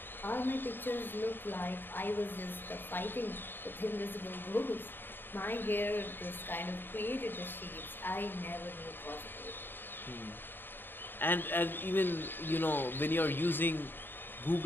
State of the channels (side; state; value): right; late; 0.097 ms